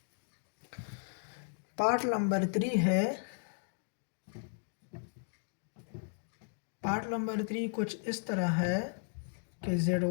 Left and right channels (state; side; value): silent; right; 54 dB below the other